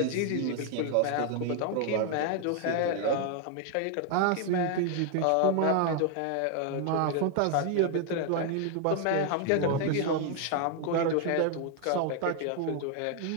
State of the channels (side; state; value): both; different; correlation 0.00